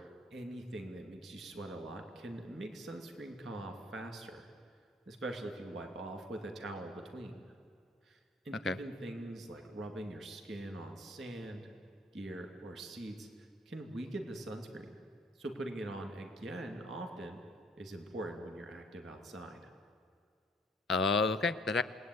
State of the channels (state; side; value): normal; both; correlation 0.59